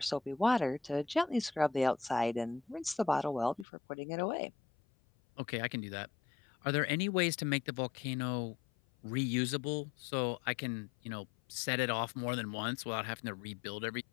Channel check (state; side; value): drops out; right; at 3.7 s